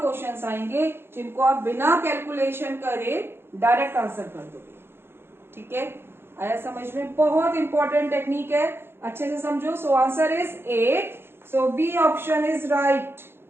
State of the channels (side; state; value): left; late; 0.11 ms